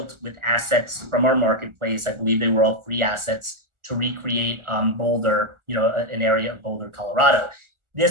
with assets from our marketplace. I believe they were all free assets to recreate Boulder, an area of Boulder, Colorado.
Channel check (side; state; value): left; late; 1.4 ms